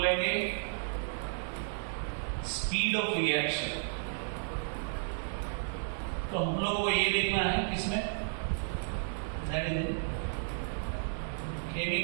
स्पीड ऑफ रिएक्शन। तो हम लोगों को ये देखना है किसमें, that is in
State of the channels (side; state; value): left; silent; digital silence